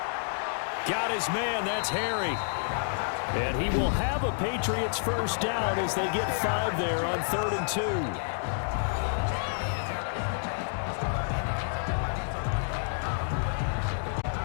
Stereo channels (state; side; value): silent; right; digital silence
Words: Got his man, that's Harry. And he will have a Patriots first down as they get 5 there on 3rd and